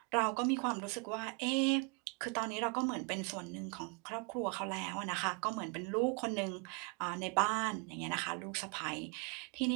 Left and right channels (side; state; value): left; quieter; 33.5 dB